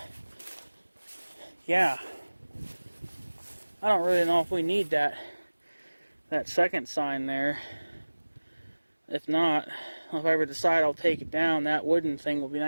yeah, I don't really know if we need that second sign there. If not, if I ever decide I'll take it down, that wooden thing will be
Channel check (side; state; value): both; inverted; correlation -1.00